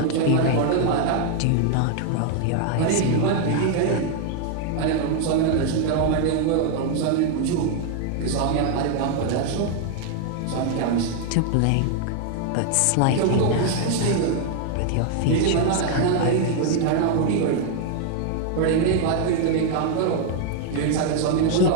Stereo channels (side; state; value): both; different; correlation 0.00